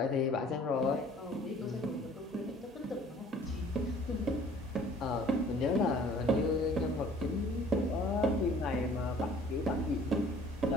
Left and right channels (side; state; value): both; normal; correlation 0.53